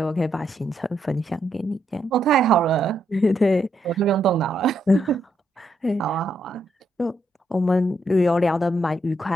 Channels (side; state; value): both; normal; correlation 0.78